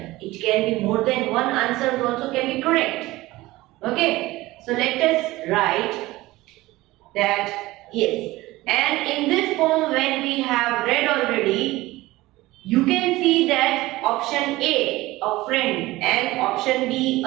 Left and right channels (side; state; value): left; quieter; 18.7 dB